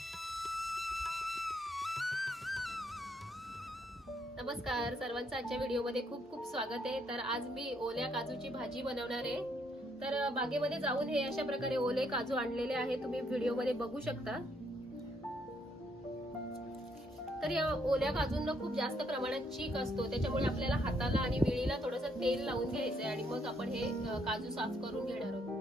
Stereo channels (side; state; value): both; normal; correlation 0.72